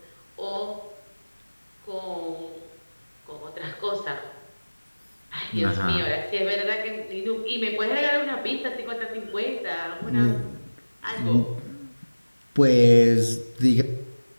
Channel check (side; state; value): both; inverted; correlation -1.00